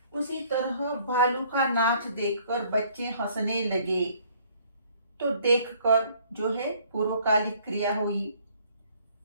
उसी तरह भालू का नाच देखकर बच्चे हंसने लगे, तो देखकर जो है पूर्वकालिक क्रिया हुई।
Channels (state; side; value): inverted; both; correlation -0.60